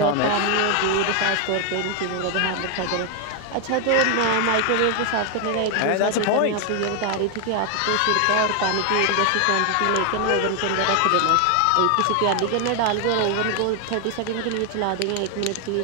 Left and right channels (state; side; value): different; both; correlation 0.00